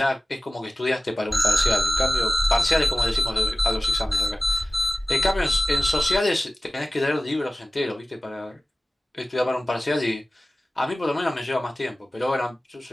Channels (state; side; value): normal; both; correlation 0.95